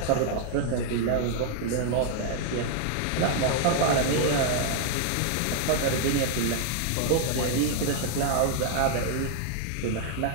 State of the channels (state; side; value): different; both; correlation 0.00